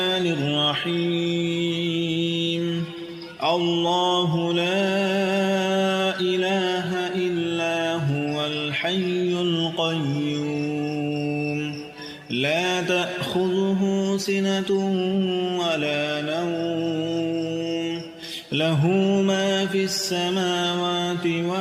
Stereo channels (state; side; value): identical; both; correlation 1.00